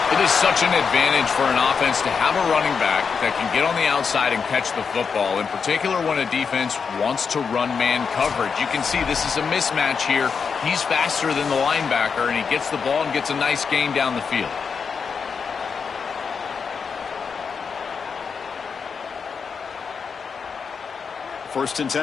It is such an advantage for an offense to have a running back that can get on the outside and catch the football, in particular when a defense wants to run man coverage. You can see this is a mismatch here. He's faster than the linebacker, and he gets the ball and gets a nice gain down the field. First and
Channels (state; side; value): quieter; right; 5.8 dB